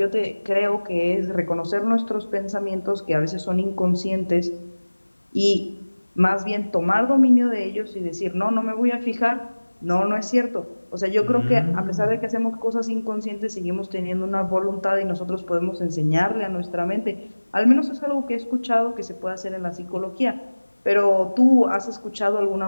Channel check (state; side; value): inverted; both; correlation -1.00